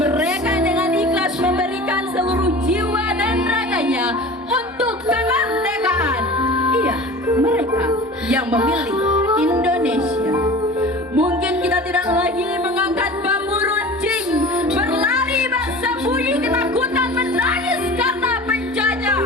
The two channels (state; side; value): normal; both; correlation 0.38